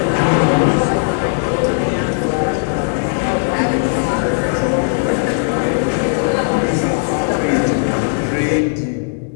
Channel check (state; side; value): silent; right; digital silence